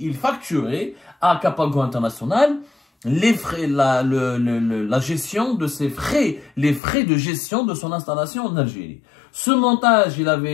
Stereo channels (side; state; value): right; drops out; at 6.8 s